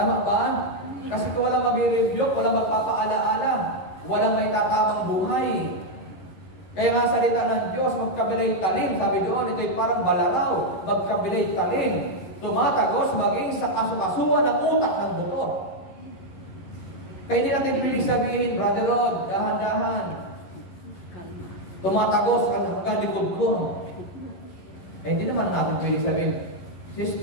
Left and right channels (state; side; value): late; right; 11 ms